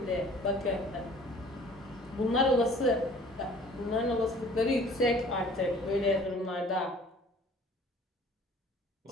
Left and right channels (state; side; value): normal; both; correlation 0.51